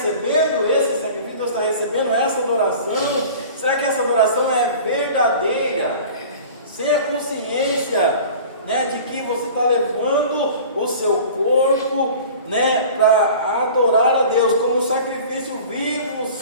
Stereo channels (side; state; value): both; inverted; correlation -0.41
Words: esse sacrifício? Deus está recebendo essa adoração? Será que essa adoração é verdadeira? Sem a consciência, né, de que você está levando o seu corpo, né, para adorar a Deus como um sacrifício vivo,